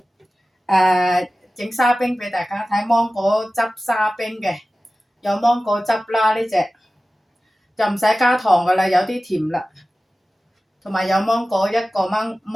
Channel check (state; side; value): normal; both; correlation 0.96